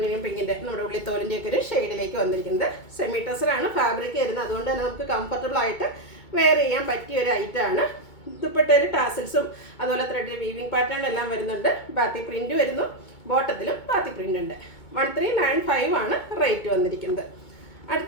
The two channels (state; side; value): late; right; 2.2 ms